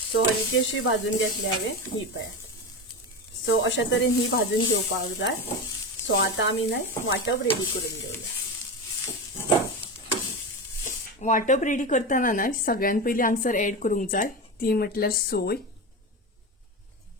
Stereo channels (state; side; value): normal; both; correlation 0.21